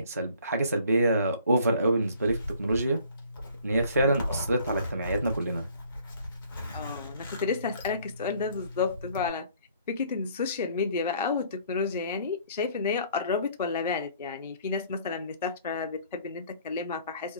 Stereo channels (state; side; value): inverted; both; correlation -0.57